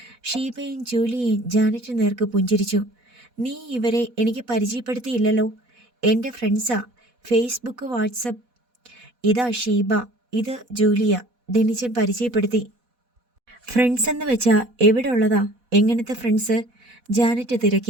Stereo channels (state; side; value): late; left; 4.1 ms